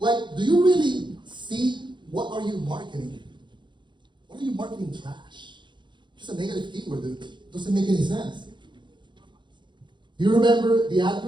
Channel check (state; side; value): late; left; 0.23 ms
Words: do you really see what are you marketing? What are you marketing trash? Just a negative keyword, dude. Doesn't make any sense. You remember the ad